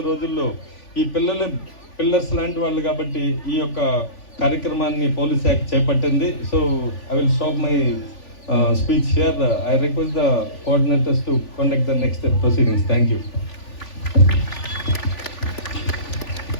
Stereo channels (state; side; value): late; right; 3.4 ms